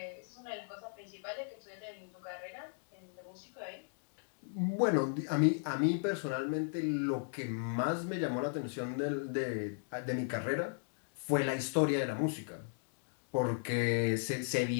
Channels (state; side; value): silent; right; digital silence